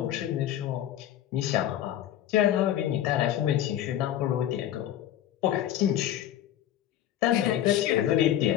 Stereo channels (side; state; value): right; quieter; 11.7 dB